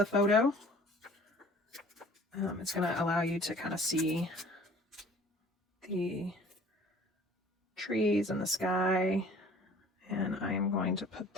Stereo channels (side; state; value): both; normal; correlation 0.50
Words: photo. It's going to allow you to kind of see the trees and the sky. And I am going to put